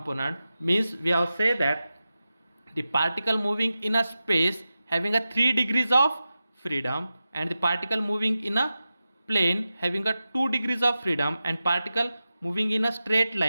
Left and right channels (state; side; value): inverted; both; correlation -0.93